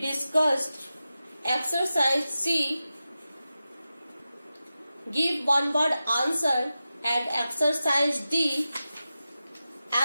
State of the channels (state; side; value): inverted; both; correlation -0.93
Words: exercise C. Give one word answer, and exercise D.